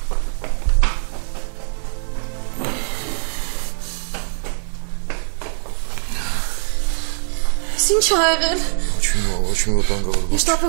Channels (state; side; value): silent; left; 59 dB below the other